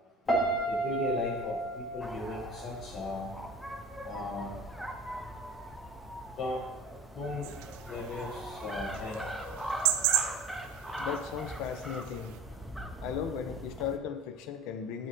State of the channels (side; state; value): both; normal; correlation 0.39